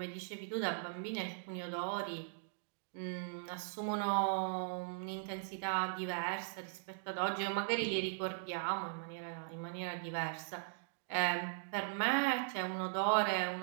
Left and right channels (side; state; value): left; silent; digital silence